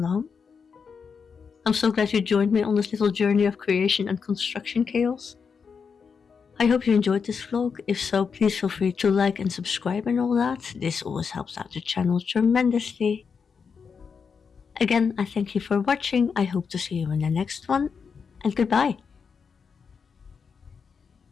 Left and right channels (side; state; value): right; quieter; 5.9 dB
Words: I'm so glad you joined me on this little journey of creation and construction chaos. I hope you enjoyed this vlog. If so, please feel free to like and subscribe and all that. This always helps out the channel tremendously. Again, I thank you for watching. I hope to see you in the next one, and goodbye.